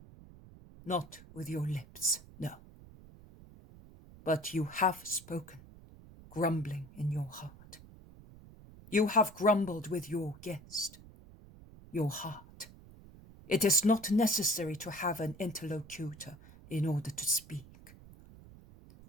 "Not with your lips, no. But you have spoken, grumbling in your heart. You have grumbled with your guest, your heart. It is not necessary to have an interlocutor in order to speak.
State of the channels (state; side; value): noise; right; rumble, 20 dB below the sound